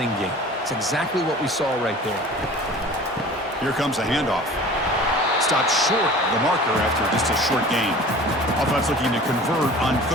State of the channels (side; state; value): both; normal; correlation 0.42